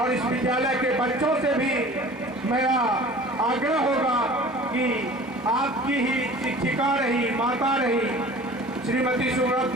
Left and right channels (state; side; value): normal; both; correlation 0.43